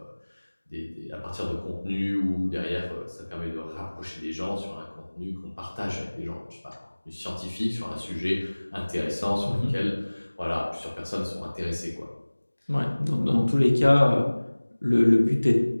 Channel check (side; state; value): both; inverted; correlation -1.00